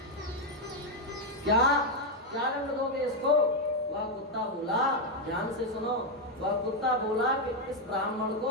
क्या क्या दंड दोगे इसको? वह कुत्ता बोला, ध्यान से सुनो, वह कुत्ता बोला कि इस ब्राह्मण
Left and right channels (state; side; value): normal; both; correlation 0.02